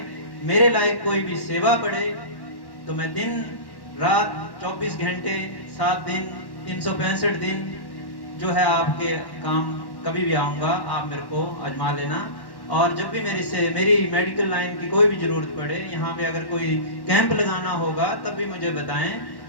मेरे लायक कोई भी सेवा पड़े, तो मैं दिन रात 24 घंटे 7 दिन 365 दिन जो है आपके काम कभी भी आऊँगा, आप मेरे को आजमा लेना। और जब भी मेरी मेडिकल लाइन की कोई भी जरूरत पड़े, यहाँ पे अगर कोई कैंप लगाना होगा तब भी मुझे बताएं।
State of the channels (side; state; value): right; late; 1.1 ms